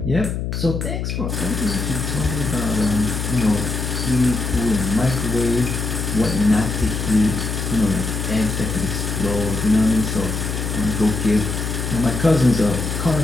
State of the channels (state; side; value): noise; left; hum, 3 dB below the sound